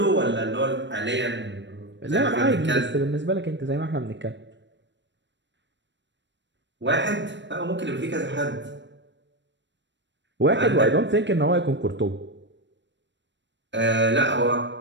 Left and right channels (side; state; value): left; late; 0.53 ms